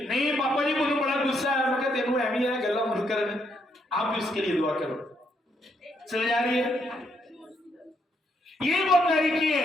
नहीं पापा जी मुझे बड़ा गुस्सा है, मैं कहते तेनू एवं है गल्ला मुझ कर, आप भी इसके लिए दुआ करो। समझ आ रही है? ये वो तरीकी है,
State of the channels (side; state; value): both; normal; correlation 0.75